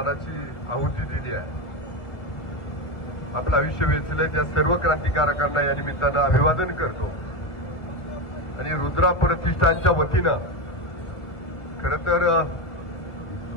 आहुती दिली आहे, आपलं आयुष्य वेचलंय, त्या सर्व क्रांतिकारकांना या निमित्तानं अभिवादन करतो। आणि रुद्रा प्रतिष्ठानच्या वतीनं खरं तर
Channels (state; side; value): late; right; 1.6 ms